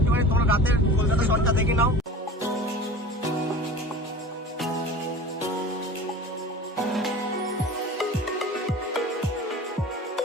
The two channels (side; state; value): both; normal; correlation 0.38